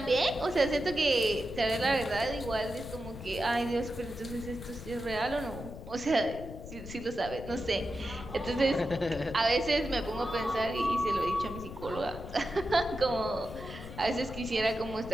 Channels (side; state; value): left; noise; rumble, 12 dB below the sound